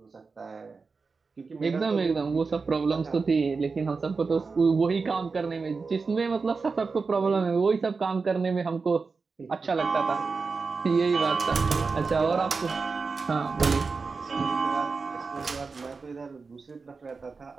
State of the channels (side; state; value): left; quieter; 4.5 dB